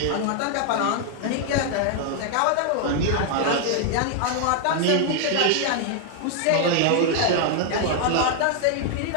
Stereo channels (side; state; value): both; different; correlation 0.00